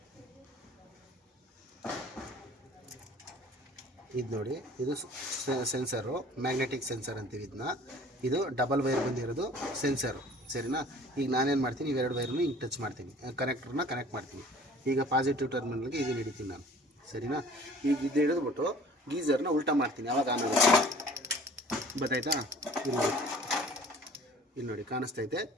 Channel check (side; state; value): both; normal; correlation 0.48